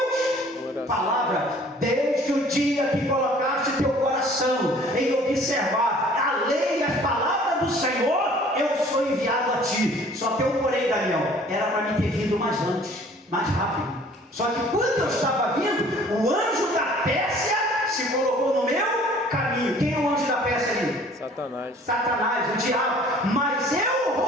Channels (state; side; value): normal; both; correlation 0.53